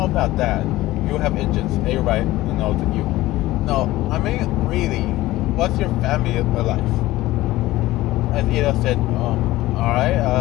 about that. You have engines. Everybody knows that you. No, I mean, really, what's your family like? As Ida said, alright,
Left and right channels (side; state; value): right; quieter; 17.2 dB